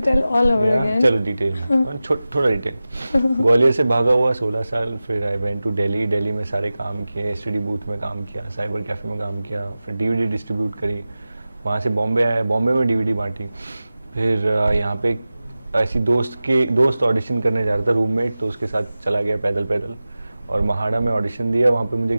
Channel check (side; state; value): both; inverted; correlation -0.96